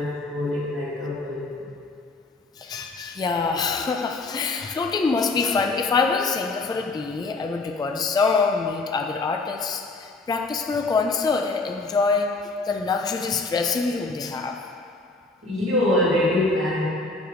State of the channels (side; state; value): right; quieter; 3.4 dB